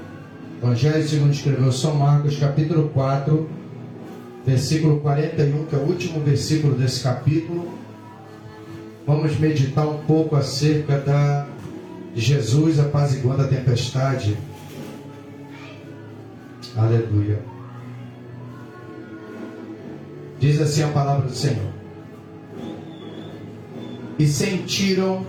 Evangelho segundo escreveu São Marcos, capítulo 4, versículo 41, que é o último versículo desse capítulo. Vamos meditar um pouco acerca de Jesus apaziguando a tempestade. Aleluia. Diz assim a palavra do Senhor: e sentiram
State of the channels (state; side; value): identical; both; correlation 1.00